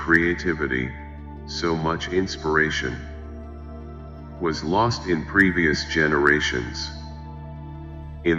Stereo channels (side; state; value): both; identical; correlation 1.00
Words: so much inspiration was lost in previous generations,